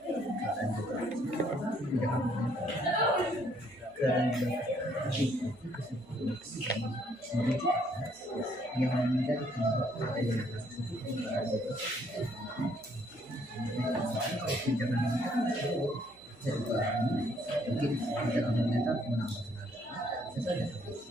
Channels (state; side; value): noise; right; hum, 28 dB below the sound